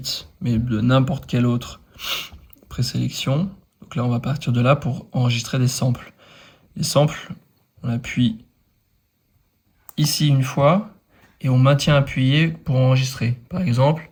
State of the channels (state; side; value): identical; both; correlation 1.00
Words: mais de n'importe quel autre présélection. Donc là, on va partir de là pour enregistrer des samples. Les samples, on appuie ici une fois et on maintient appuyé pour enregistrer. Par exemple,